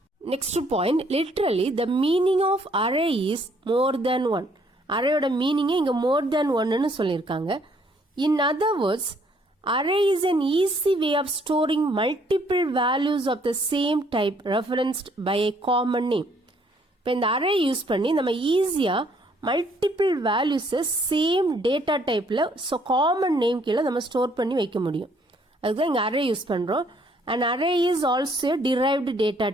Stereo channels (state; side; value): normal; both; correlation 0.65